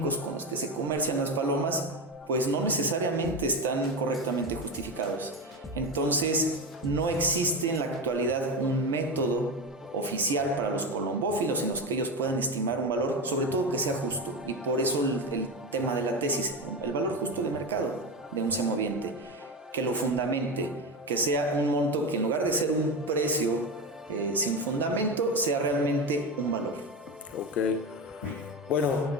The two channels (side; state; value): both; normal; correlation 0.19